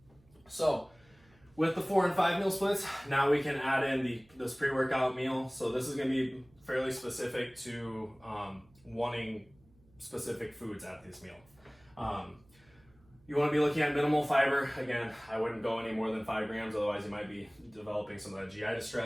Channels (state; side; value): noise; right; hum, 30 dB below the sound